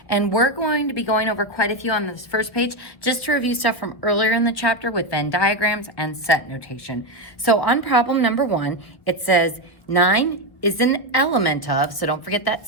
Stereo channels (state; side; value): late; right; 1.4 ms